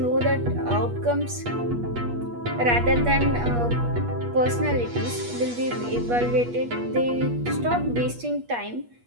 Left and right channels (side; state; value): left; late; 8.3 ms